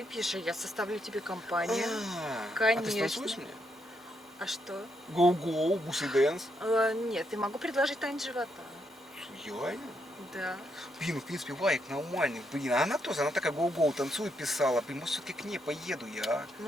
а я составлю тебе компанию. А ты Конечно. станцуешь мне? А что? Гоу-гоу, бусы дэнс. Нет, я могу предложить танец живота. Реально? Да. Блин, ну, в принципе, Варик нормальный, блин, а она тоже, она такая гоу-гоу танцует, писала, блин, может, все-таки к ней поеду я, а?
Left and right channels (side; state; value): both; normal; correlation 0.78